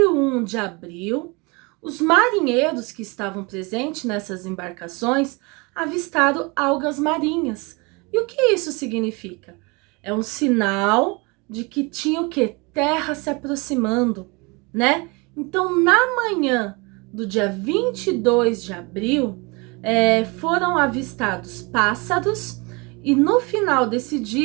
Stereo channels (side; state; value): left; quieter; 27.9 dB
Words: de abril, os marinheiros que estavam presentes nessas embarcações avistaram algas marinhas. E o que isso significa? É um sinal de que tinha o quê? Terra se aproximando, né? Então, na manhã do dia 22 de abril, foram avistados pássaros e no final desse